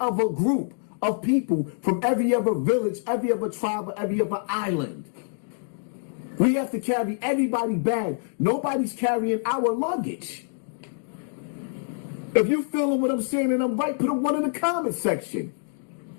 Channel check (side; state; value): right; silent; digital silence